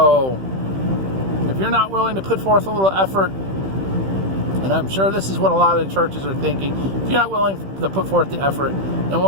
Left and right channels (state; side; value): late; left; 15 ms